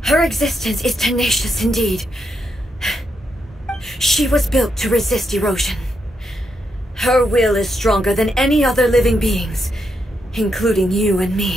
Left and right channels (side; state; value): both; normal; correlation 0.81